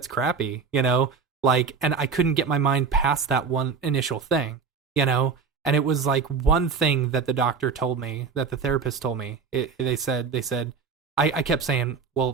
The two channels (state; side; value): quieter; left; 5.5 dB